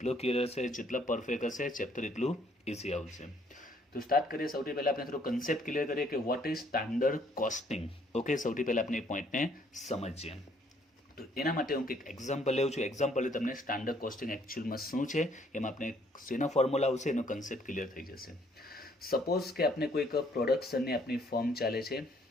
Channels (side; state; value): both; normal; correlation 0.65